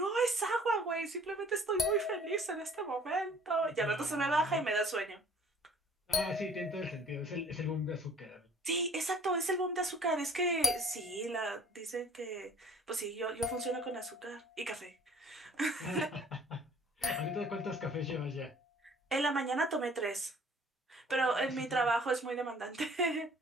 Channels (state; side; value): normal; both; correlation 0.54